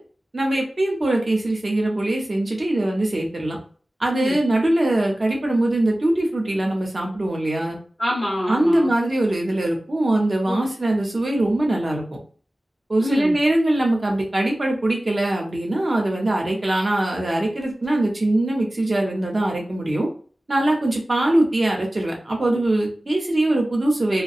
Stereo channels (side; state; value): both; normal; correlation 0.97